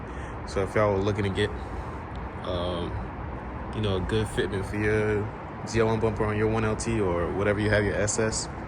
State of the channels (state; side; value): identical; both; correlation 1.00